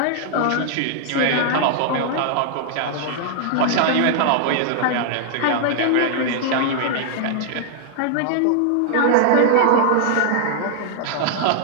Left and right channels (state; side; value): different; both; correlation -0.01